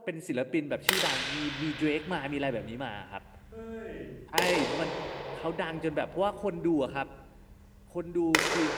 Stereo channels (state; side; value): identical; both; correlation 1.00